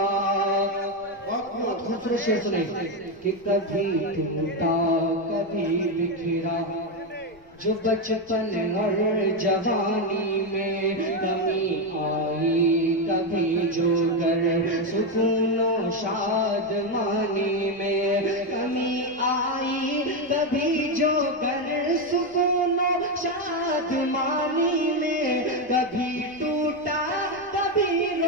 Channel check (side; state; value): left; noise; rumble, 29 dB below the sound